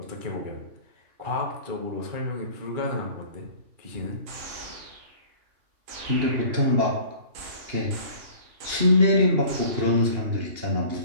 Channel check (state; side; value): late; left; 2.8 ms